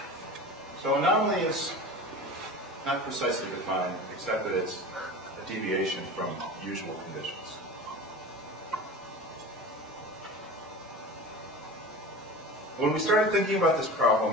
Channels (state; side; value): normal; both; correlation 0.34